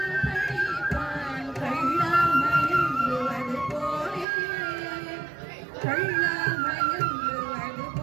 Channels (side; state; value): left; drops out; at 4.2 s